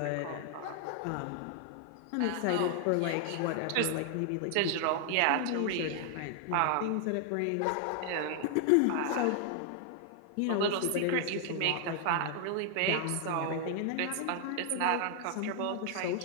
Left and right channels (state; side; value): different; both; correlation 0.00